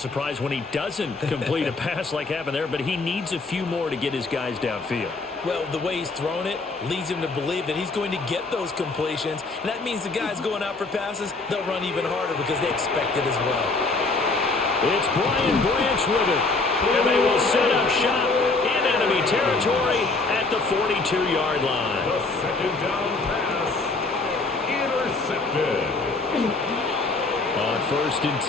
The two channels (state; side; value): quieter; right; 3.6 dB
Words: when he doesn't complete a pass like happened there, but he needs a few more to get his guys downfield. Well, the way he's thrown it leads him to believe that he's going to get those completions, and that means the guys going out for passes, they'll run even harder because they expect it as well. It's Brian Branch with it, and they will set up shop in enemy territory at the 42-yard line. The 2nd down pass intercepted. On 1st and